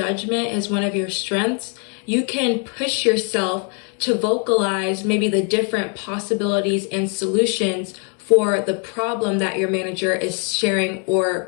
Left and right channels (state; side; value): quieter; right; 39.5 dB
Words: is one of your strengths, you can push yourself to vocalize maybe the different possibilities and solutions for the problem that your manager is sharing or